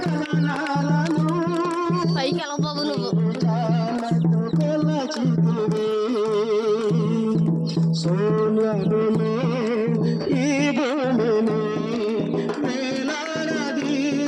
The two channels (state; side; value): identical; both; correlation 1.00